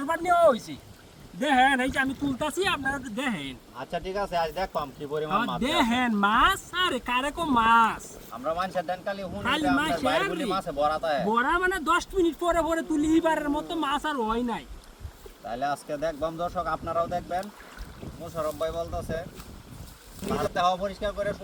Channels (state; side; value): identical; both; correlation 1.00